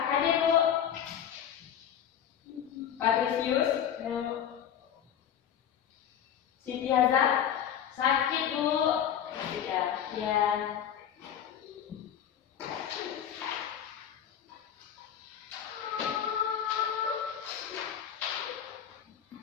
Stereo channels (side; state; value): right; quieter; 9.3 dB